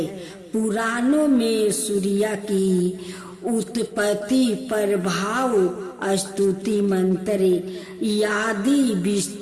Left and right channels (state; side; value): identical; both; correlation 1.00